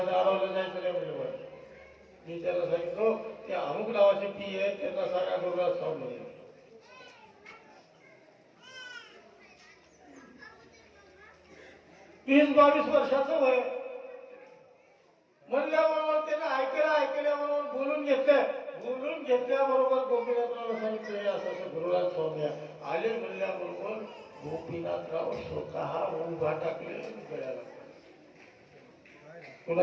अडवलं जायचं नाही म्हणजे मी त्याला सांगितलं ते अमुक नावाचे पी आहे त्यांना सांगा गुरुराज स्वामी. 20-22 वर्षाचं वय म्हणल्याबरोबर त्याने ऐकल्याबरोबर बोलून घेतल्याबरोबर गोपीनाथराव सांगितलं असं गुरुराज स्वामी आले. म्हणल्याबरोबर गोपीनाथराव स्वतः उभा टाकले गळ्याला.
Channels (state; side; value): identical; both; correlation 1.00